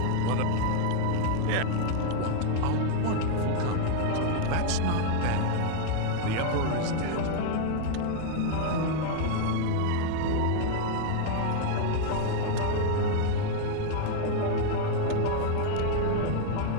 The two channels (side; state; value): both; different; correlation 0.00